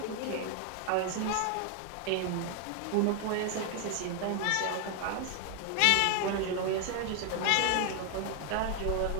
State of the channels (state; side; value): different; both; correlation 0.01